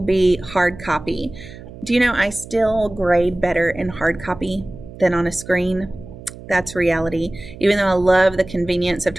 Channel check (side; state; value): right; noise; hum, 16 dB below the sound